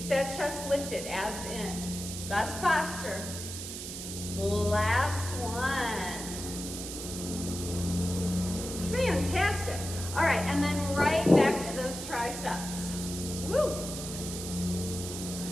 that chest lifted, abs in. Best posture. Last one. Fantastic. All right, and then right back to those triceps. Woo.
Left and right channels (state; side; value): noise; right; hiss, 8 dB below the sound